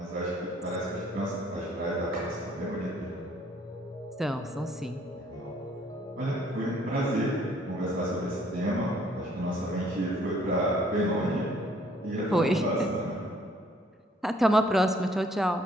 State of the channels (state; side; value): normal; both; correlation 0.62